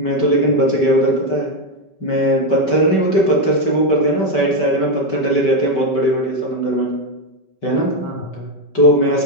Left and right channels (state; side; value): late; right; 5.2 ms